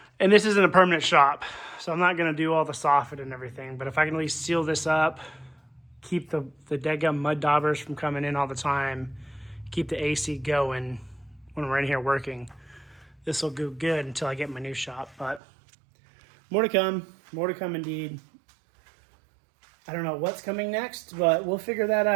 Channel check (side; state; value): left; drops out; at 15.4 s